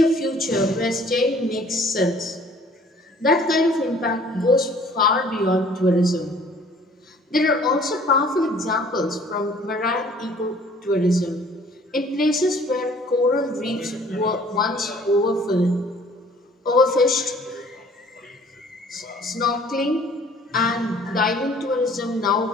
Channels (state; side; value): normal; both; correlation 0.55